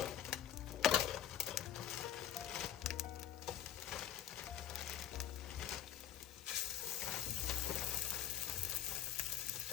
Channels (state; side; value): quieter; right; 10.6 dB